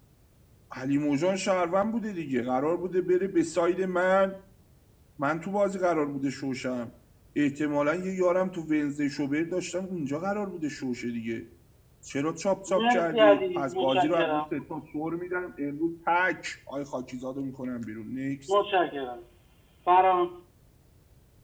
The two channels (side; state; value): both; identical; correlation 1.00